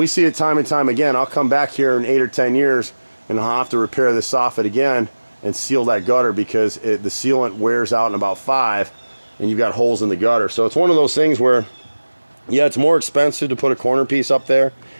see it time and time again. I'll come back here in 8 or 10 years and I'll have to repair this soffit again and seal that gutter because the sealant wears out in about 5 and you've got holes in the gutter. So it's one of those things where, yeah, it's more expensive to put a corner piece up there.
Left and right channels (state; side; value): inverted; both; correlation -1.00